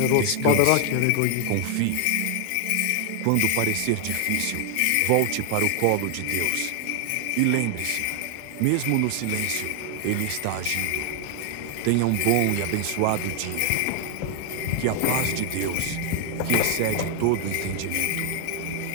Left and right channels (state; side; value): different; both; correlation 0.00